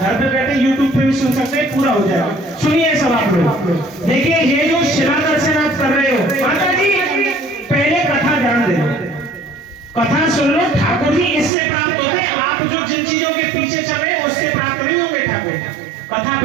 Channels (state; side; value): drops out; left; at 11.5 s